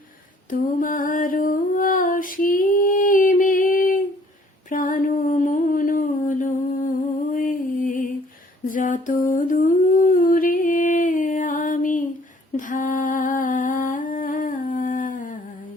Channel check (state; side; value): normal; both; correlation 0.59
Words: তোমার অসীমে প্রাণ মন লয়ে যত দূরে আমি ধাই,